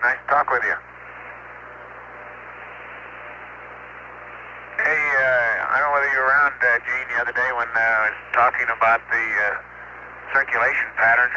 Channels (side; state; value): both; identical; correlation 1.00